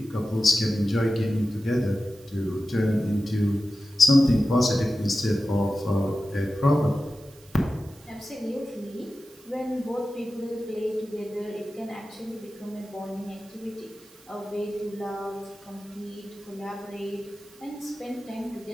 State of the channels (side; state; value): right; noise; hiss, 25 dB below the sound